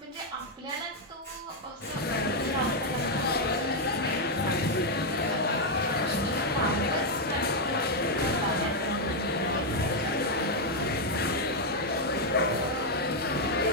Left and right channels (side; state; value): both; normal; correlation 0.01